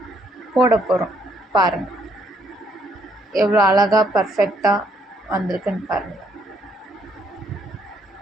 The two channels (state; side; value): normal; both; correlation 0.70